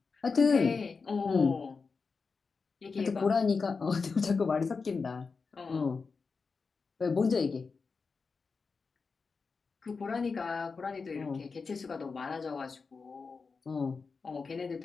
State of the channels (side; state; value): right; quieter; 4.8 dB